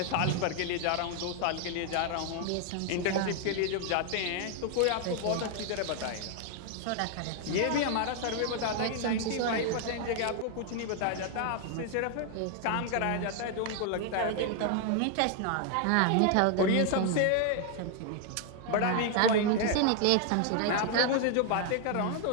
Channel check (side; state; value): both; different; correlation 0.00